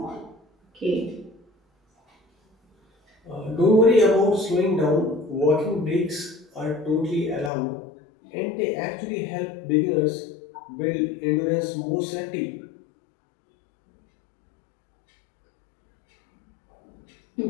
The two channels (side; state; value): right; drops out; at 7.5 s